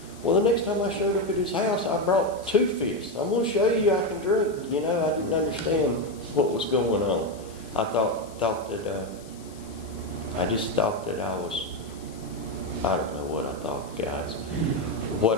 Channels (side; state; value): left; noise; hiss, 22 dB below the sound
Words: Well, the next time I showed up at his house, I brought 2 fists. I'm going to show you I can drink. You know, I didn't understand what was going on. I thought that, I just thought that I was, I don't know what I thought, guys.